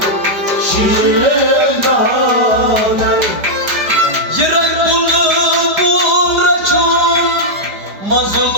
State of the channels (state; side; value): late; left; 5.0 ms